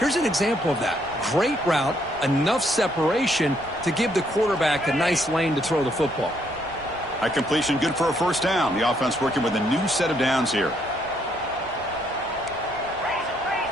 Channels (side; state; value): right; noise; rumble, 22 dB below the sound